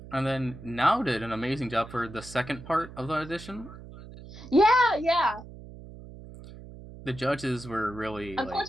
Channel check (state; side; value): noise; right; hum, 15 dB below the sound